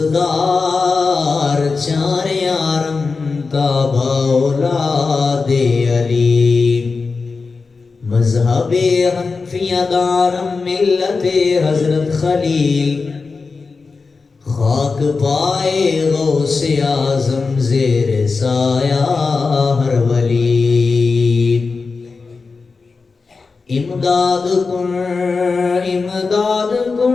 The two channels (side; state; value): right; quieter; 4.4 dB